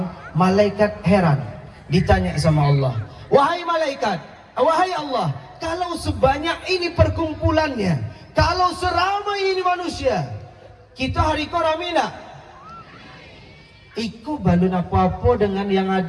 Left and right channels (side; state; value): both; identical; correlation 1.00